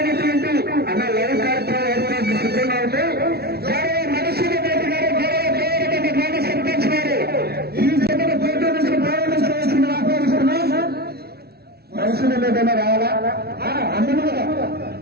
అన్న లైవ్ కార్యక్రమం ఏర్పాటు సిద్ధంగా ఉంది. గౌరవ మనుషుల రెడ్డి గారు గౌరవ దేవరకొండ గ్రామ సర్పంచ్ గారు ఈ జతను పోటీ నుంచి ప్రారంభించవలసిందిగా ఆహ్వానిస్తున్నాం. మనుషుల ఏదైనా రావాలా అందరూ కదా.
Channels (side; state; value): left; late; 0.46 ms